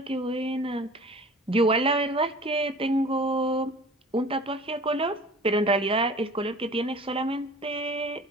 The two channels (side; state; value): both; normal; correlation 0.44